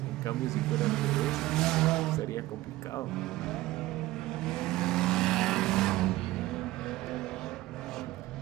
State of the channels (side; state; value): left; quieter; 17.5 dB